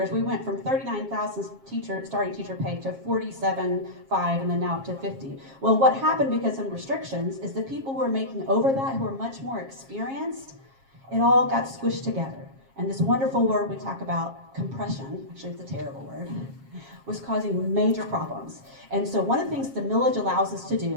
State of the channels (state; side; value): late; left; 7.4 ms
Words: we went from $39,000 starting teacher pay to $47,500, and then now up to $50,000. Well, what happened because of restrictions is the people who are making over that, who are much more experienced, it all got squished together. And this wonderful word we talk about, compression, actually it's a terrible word, was causing major problems. And so one of the things the millage allows us to